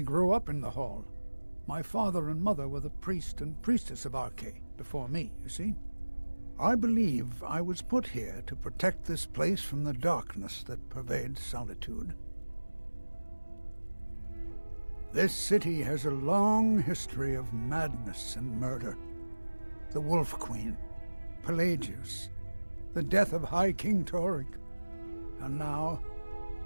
grew up in the hall. My father and mother were the priest and priestess of Archay before me, you see. I believe I was put here to protect this place from the darkness that pervades Solitude. This city has a long history of madness and murder. The Wolf Queen, Pelagius, the death of High King Torygg, and now,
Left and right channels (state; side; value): inverted; both; correlation -1.00